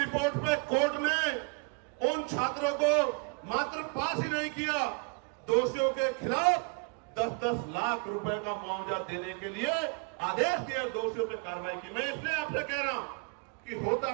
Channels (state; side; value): quieter; left; 33.5 dB